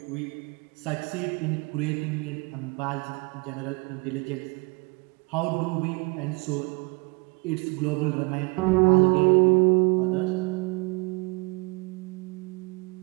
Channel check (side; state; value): left; quieter; 28.0 dB